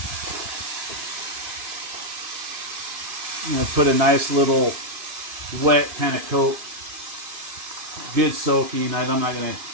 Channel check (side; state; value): left; late; 2.5 ms